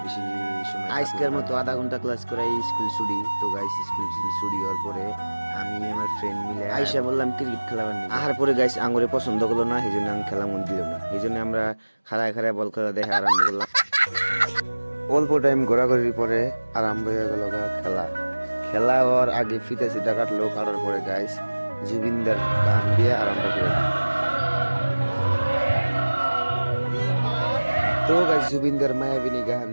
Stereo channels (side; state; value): both; inverted; correlation -1.00